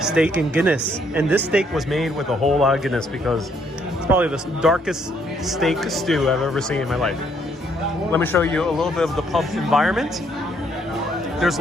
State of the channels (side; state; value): both; normal; correlation 0.69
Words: steak and Guinness. And this steak was made with a whole lot of Guinness because it's probably the darkest steak stew I've ever seen in my life. Let me show you a little bit of the pub environment. There's